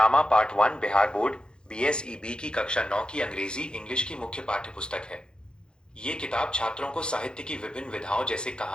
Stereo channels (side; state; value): right; late; 0.049 ms